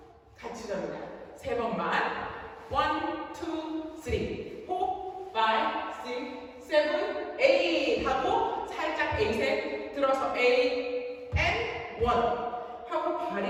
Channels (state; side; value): identical; both; correlation 1.00